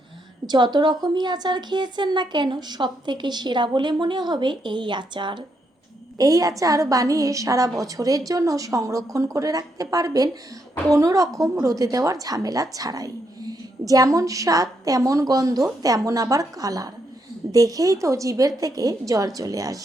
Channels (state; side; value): normal; both; correlation 0.78